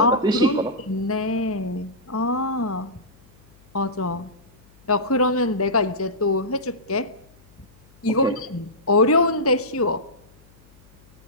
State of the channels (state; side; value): noise; left; hum, 29 dB below the sound